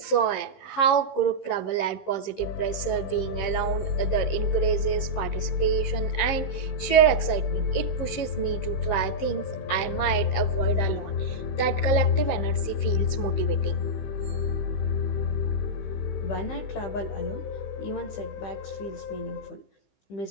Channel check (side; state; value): right; late; 15 ms